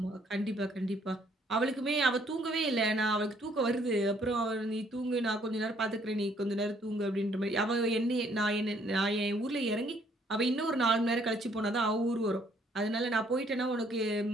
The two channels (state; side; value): normal; both; correlation 0.65